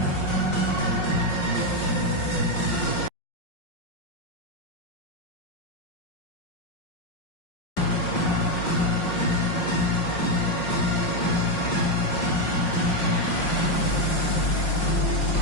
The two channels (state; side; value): late; right; 5.5 ms